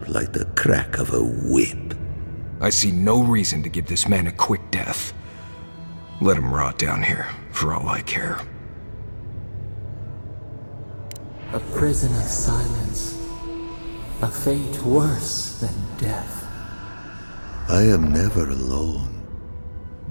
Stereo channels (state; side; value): inverted; both; correlation -1.00